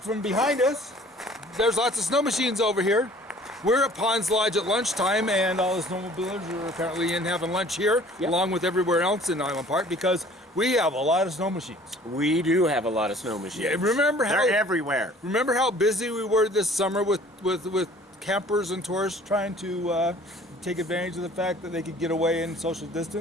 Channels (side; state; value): both; normal; correlation 0.51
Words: behind us, there's lots of snow machines over here. We're at Ponds Lodge at lunchtime, and all the snowmobilers are apparently in having lunch here, along with everywhere else in Island Park, because we have a lot of snow machines. We do have a lot of snow machines. Yeah, they're everywhere. Remember how busy we were this summer with campers and tourists trying to take advantage of the fact that they could get away and social